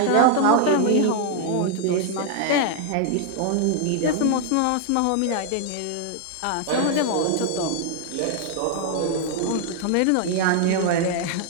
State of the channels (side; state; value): both; different; correlation 0.00